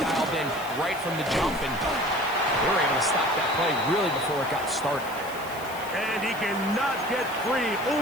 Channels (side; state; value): left; noise; hiss, 17 dB below the sound